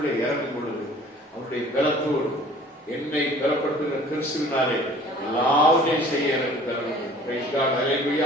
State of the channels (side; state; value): both; normal; correlation 0.50